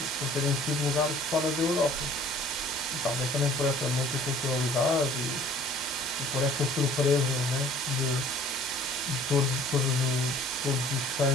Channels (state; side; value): normal; both; correlation 0.52